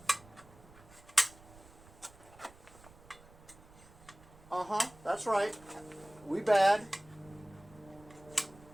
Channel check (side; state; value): right; noise; rumble, 23 dB below the sound